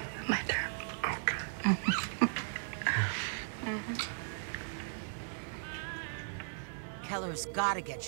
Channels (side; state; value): left; silent; 53 dB below the other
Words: My turn. Okay. Keller's got to get